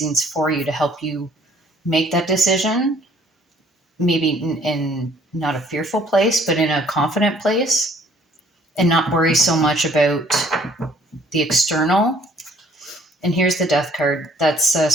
for you to help you make that decision. Maybe in not a fearful place, but in a confident place, and not worry so much about the external. And here's the Death card. That's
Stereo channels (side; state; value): both; normal; correlation 0.59